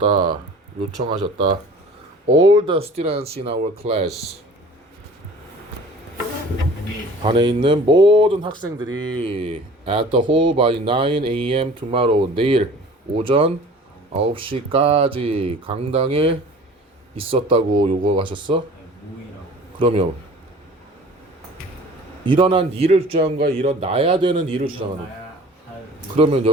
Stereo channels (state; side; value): normal; both; correlation 0.46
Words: 요청하셨다. All the students in our class. 반에 있는 모든 학생들이 at the hall by 9 a.m. tomorrow. 내일 오전 9시까지 강당에 있었다고 요구하셨어? 모이라고. 그러면 일어난 일을 주장한 거야? 일어나야 되는 일을 주장하는 거야? 나야 할 그러면